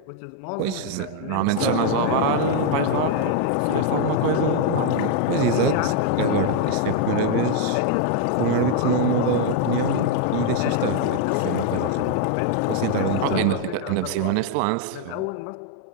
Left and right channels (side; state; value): both; different; correlation 0.00